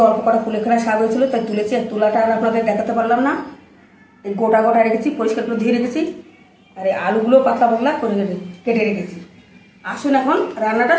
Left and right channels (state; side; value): identical; both; correlation 1.00